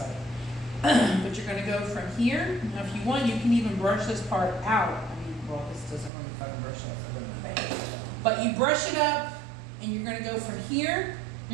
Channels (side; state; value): left; drops out; at 6.1 s